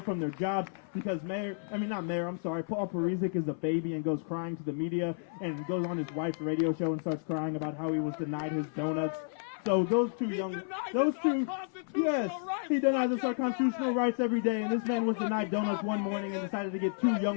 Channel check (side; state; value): right; silent; 57 dB below the other